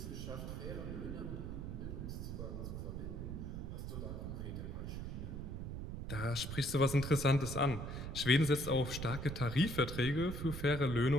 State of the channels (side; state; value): right; noise; rumble, 5 dB below the sound